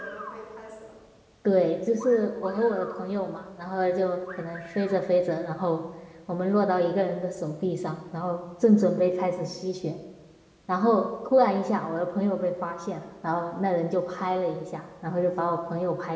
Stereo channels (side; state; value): both; identical; correlation 1.00